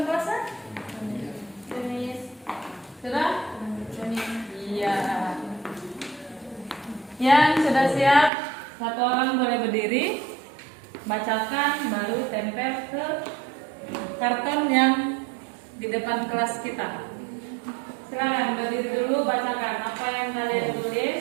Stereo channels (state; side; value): drops out; left; at 8.3 s